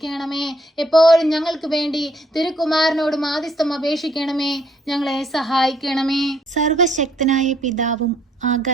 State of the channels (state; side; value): normal; both; correlation 0.67